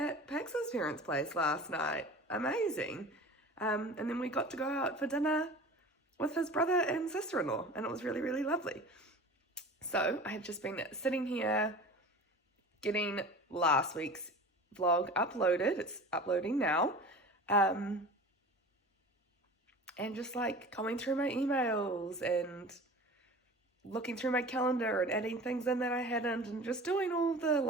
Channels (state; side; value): normal; both; correlation 0.37